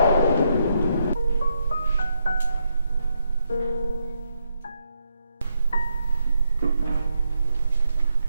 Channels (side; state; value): both; inverted; correlation -0.79